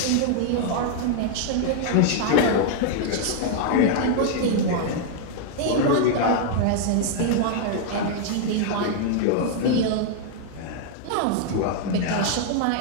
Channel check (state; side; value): different; both; correlation 0.00